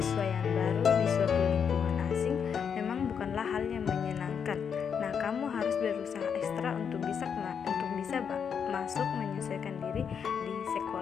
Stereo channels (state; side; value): quieter; right; 7.1 dB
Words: yang baru di suatu lingkungan asing memang bukanlah hal yang menyenangkan. Nah, kamu harus berusaha ekstra untuk bisa masuk menyesuaikan diri di